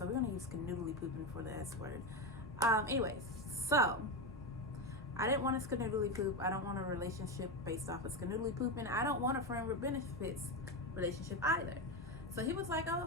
we're gonna use canoodly pooping for the S word. Anyways, so I didn't want a skanoodly poop. I don't want a relationship based off of skanoodly pooping. I don't want a friend with benefits relationship either. So he was like, oh,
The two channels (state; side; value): normal; both; correlation 0.14